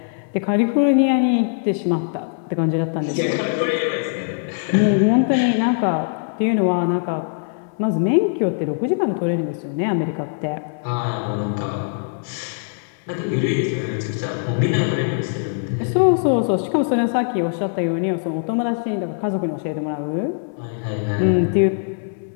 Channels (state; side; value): silent; right; 64 dB below the other